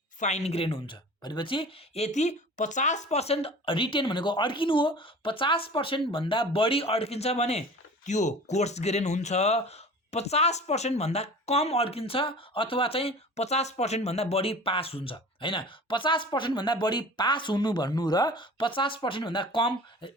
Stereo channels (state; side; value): normal; both; correlation 0.40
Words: फाइन ग्रेन हुन्छ। भनेपछि यति 50% रिटेन भनेको अड्किनु हो, 50% भन्दा बढी अड्किन्छ भने त्यो कोर्स ग्रेन हुन्छ। 50% भन्दा कम अड्किन्छ अथवा चाहिँ 50% भन्दा बढी पास हुन्छ हैन। 50% भन्दा बढी पास हुनु भन्नु र 50% भन्दा कम